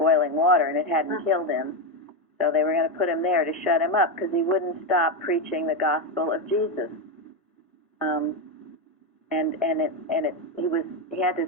water and it hadn't killed him. So they were going to put him there to shut him up because he wouldn't stop preaching the gospel of Jesus. He had to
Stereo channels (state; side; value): normal; both; correlation 0.09